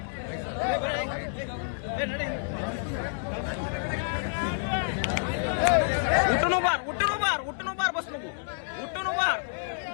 उठून उभार बस नको उठून उभार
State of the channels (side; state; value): right; silent; digital silence